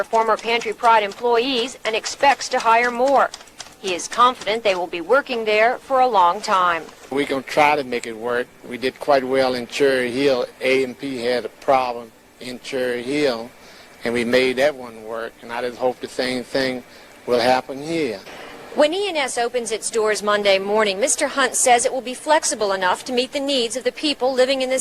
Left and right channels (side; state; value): both; identical; correlation 1.00